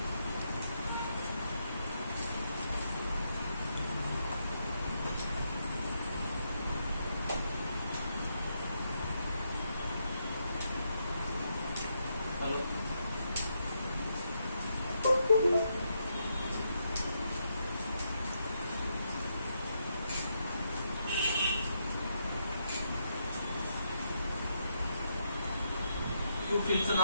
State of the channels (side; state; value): both; inverted; correlation -0.79